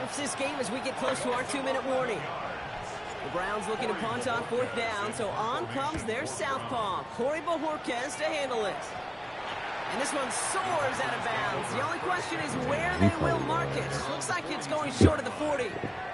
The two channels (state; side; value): identical; both; correlation 1.00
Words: this game as we get close to our 2-minute warning. The Browns looking to punt on fourth down, so on comes their southpaw, Corey Bojorquez, to handle it. And this one soars out of bounds. The only question is where they will mark it. Looks like it's going short of the 40.